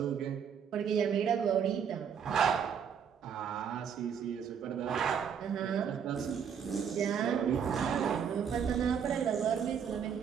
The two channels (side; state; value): left; quieter; 7.6 dB